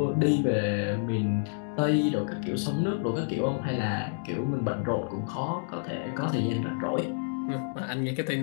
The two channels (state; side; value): silent; right; digital silence